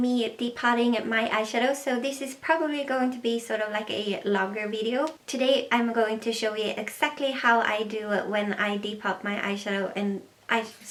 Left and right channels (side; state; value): both; identical; correlation 1.00